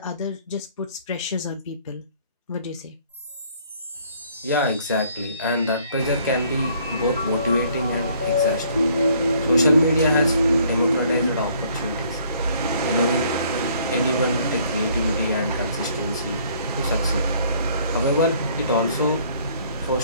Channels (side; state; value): both; inverted; correlation -0.61